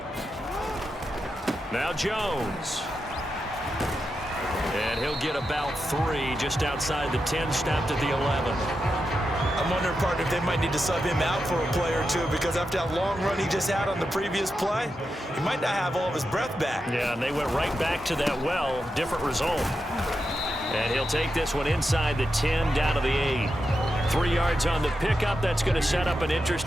Now Jones. And he'll get about 3 just outside the 10, stopped at the 11. I'm wondering, partner, if they might need to sub him out for a play or two because after that long run he just had on the previous play, he might not have all of his breath back. Yeah, and they went right back to that well. Different result. And he'll take this one inside the 10, down to the 8. 3 yards on the pickup. That's going to set up an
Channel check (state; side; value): normal; both; correlation 0.88